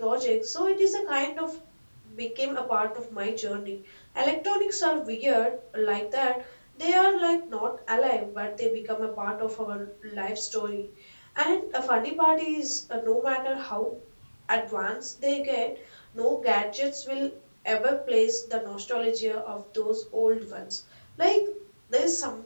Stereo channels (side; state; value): both; inverted; correlation -1.00